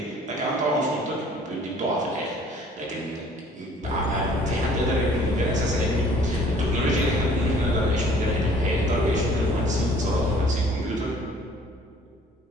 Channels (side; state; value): both; normal; correlation 0.55